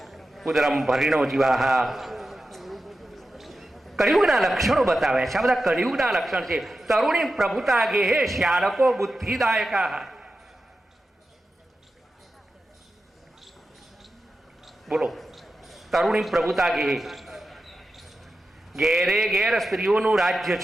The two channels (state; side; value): normal; both; correlation 0.92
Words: ઉદરમ ભરીણો જીવાહા. કળિયુગના લક્ષણો બતાવ્યા છે. આ બધા કળિયુગના લક્ષણ છે. તરુણી પ્રભુતા ગેહે શ્યાલકો બુદ્ધિદાયકા. બોલો, તરુણી પ્રભુતા ગેહે. ઘેરે ઘેર સ્ત્રીઓનું રાજ્ય